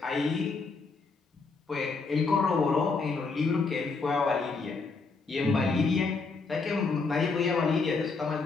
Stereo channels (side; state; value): right; quieter; 4.3 dB